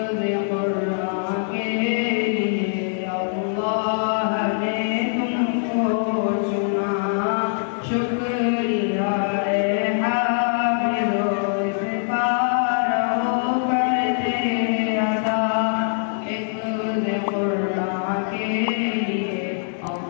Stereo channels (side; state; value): right; silent; digital silence